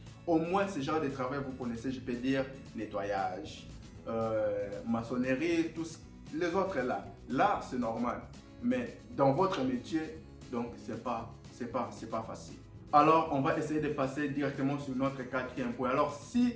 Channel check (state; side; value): identical; both; correlation 1.00